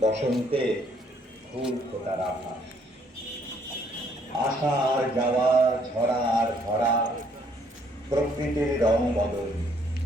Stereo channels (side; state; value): both; normal; correlation 0.66